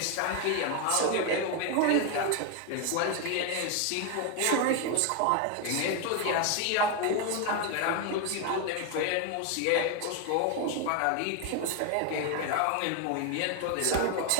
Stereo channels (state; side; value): different; both; correlation 0.01